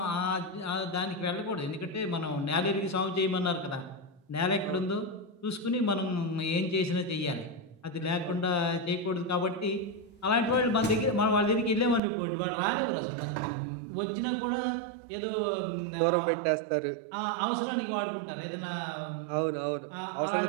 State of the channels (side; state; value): left; drops out; at 12.0 s